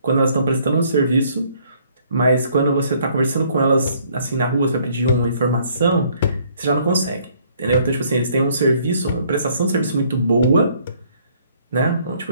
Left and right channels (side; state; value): both; inverted; correlation -0.63